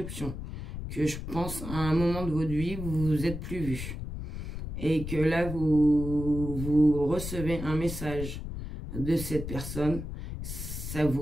Que je pense à un moment de votre vie, vous vous êtes plus vu. Et que là, vous recevez un message de cette personne, ça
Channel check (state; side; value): noise; left; rumble, 7 dB below the sound